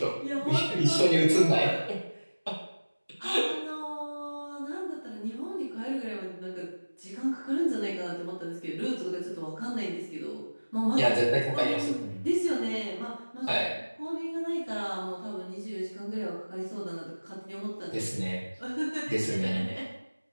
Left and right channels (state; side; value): inverted; both; correlation -1.00